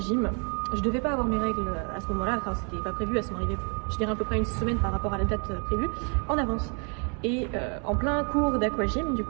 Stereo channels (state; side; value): quieter; left; 37.8 dB